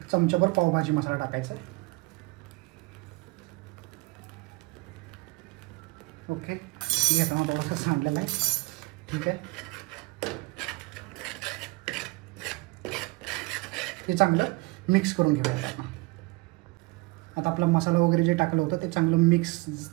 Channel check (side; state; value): left; quieter; 24.3 dB